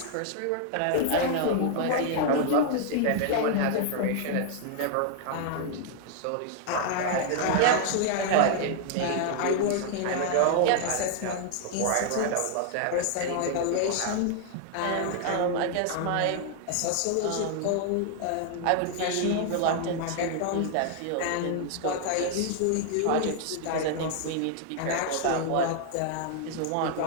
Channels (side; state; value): both; different; correlation 0.00